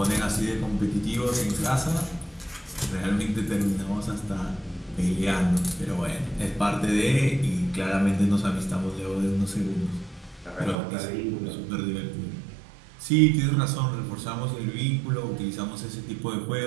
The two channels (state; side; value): drops out; left; at 10.8 s